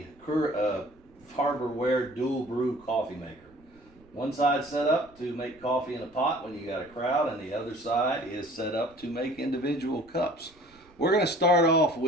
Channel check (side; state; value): right; noise; rumble, 28 dB below the sound